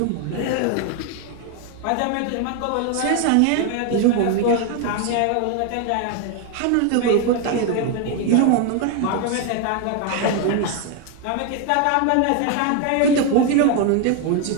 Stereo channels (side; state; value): both; different; correlation 0.01